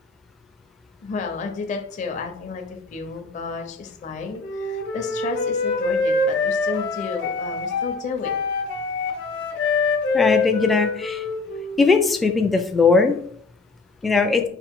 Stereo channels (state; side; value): quieter; right; 3.7 dB